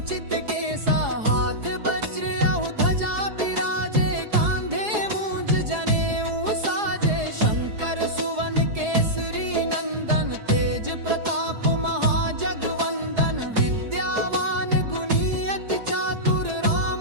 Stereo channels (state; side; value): late; left; 4.8 ms